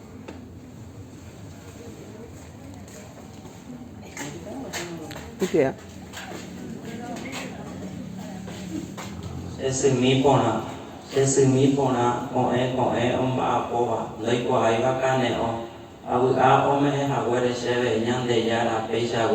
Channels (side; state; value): both; identical; correlation 1.00